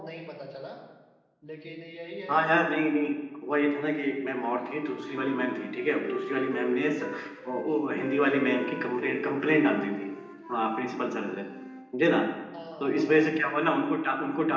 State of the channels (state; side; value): identical; both; correlation 1.00